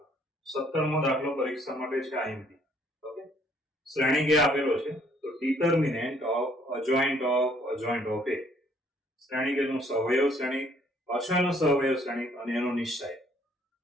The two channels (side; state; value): both; normal; correlation 0.64